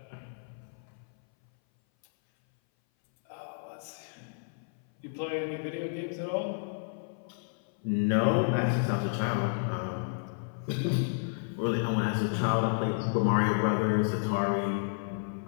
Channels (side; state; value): right; silent; 57 dB below the other